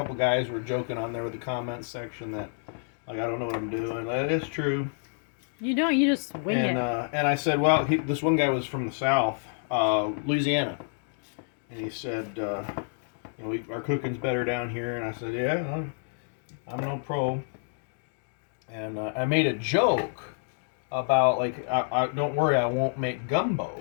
guys were joking on there with the comments section that, like, I don't know what I'm doing. That is true. You don't. You just wing it. And I said, well, this one guy was from the South, Louisiana, and he said, our cooking's better down here. And I said, yeah, I'm no pro. And I made a joke about, like, I don't worry, I won't make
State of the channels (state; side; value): silent; right; digital silence